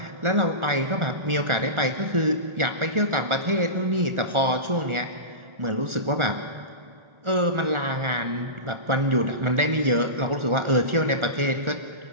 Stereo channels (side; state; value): left; late; 1.4 ms